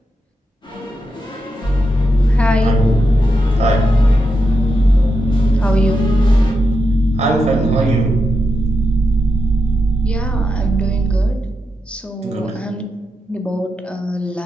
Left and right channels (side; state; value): both; normal; correlation 0.86